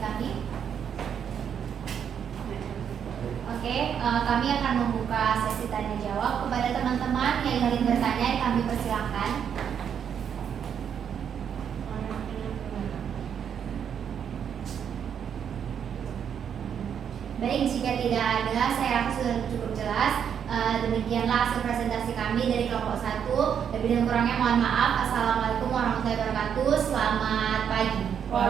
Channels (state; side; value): quieter; left; 8.1 dB